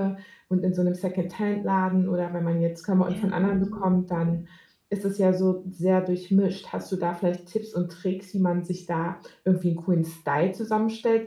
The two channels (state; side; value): identical; both; correlation 1.00